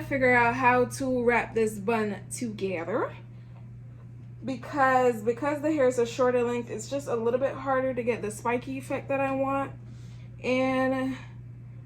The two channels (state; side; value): identical; both; correlation 1.00